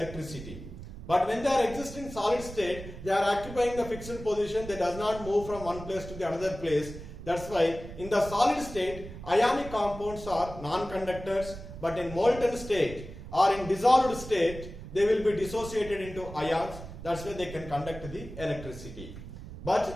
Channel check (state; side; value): noise; right; rumble, 12 dB below the sound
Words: But when they are existing solid state, they are occupying the fixed position. They does not move from one place to the another place. That's why in the solid state, ionic compounds are non-conductors, but in molten state or in dissolved state, they will be dissociated into ions. That's why they can conduct the electricity.